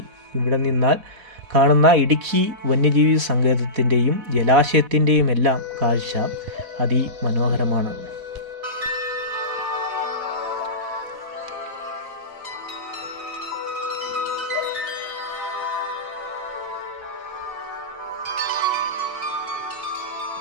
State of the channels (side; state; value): left; late; 4.1 ms